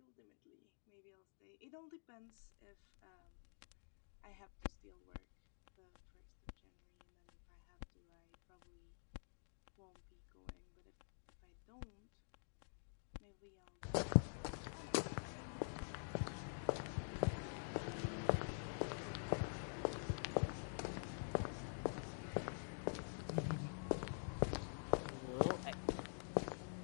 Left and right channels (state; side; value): silent; right; digital silence